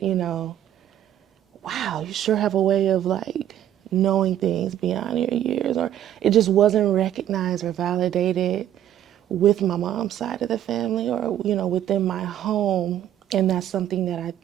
wow, you sure have a way of like knowing things beyond your years, or it just wasn't recognized or validated with my mom's side of the family, or within my home. And that's something that I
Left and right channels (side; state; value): left; quieter; 11.2 dB